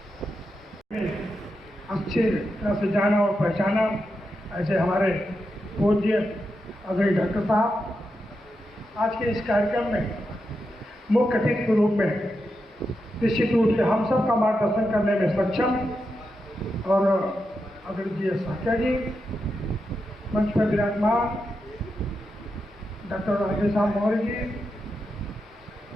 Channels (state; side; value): normal; both; correlation 0.87